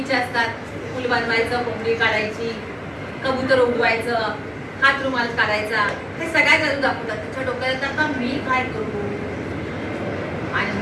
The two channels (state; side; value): identical; both; correlation 1.00